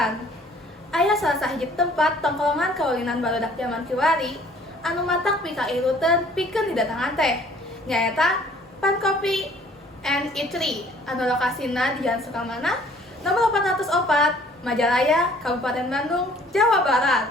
Aya salah sahiji tempat tongkrongan kaulinan barudak zaman kiwari anu matak pikairuteun pikeun didatangan teh nyaeta Pan Kopi and Eatery anu lokasina di Jalan Sukamana nomor 404 Majalaya, Kabupaten Bandung, Jawa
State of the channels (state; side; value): normal; both; correlation 0.56